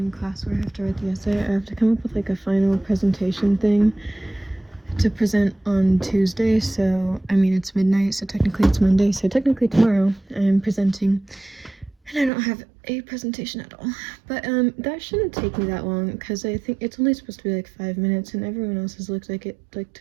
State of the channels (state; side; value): drops out; left; at 12.3 s